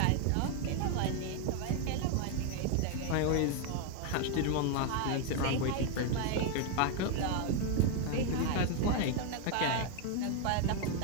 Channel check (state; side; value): different; both; correlation 0.01